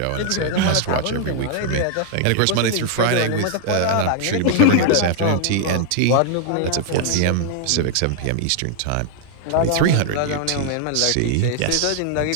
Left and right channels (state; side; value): different; both; correlation 0.00